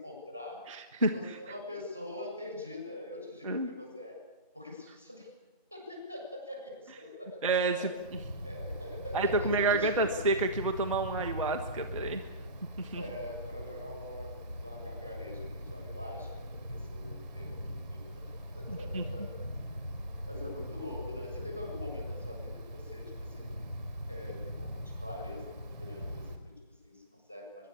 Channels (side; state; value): both; inverted; correlation -0.31